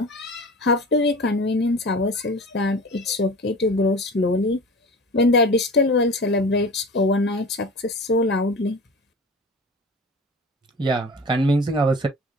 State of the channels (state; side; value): normal; both; correlation 0.36